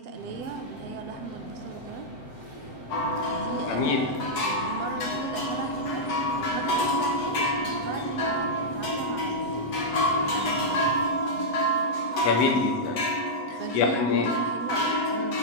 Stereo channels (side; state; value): right; late; 8.1 ms